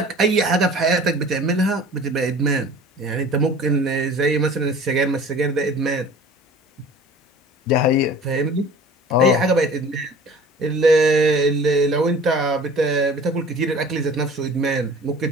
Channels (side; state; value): both; normal; correlation 0.44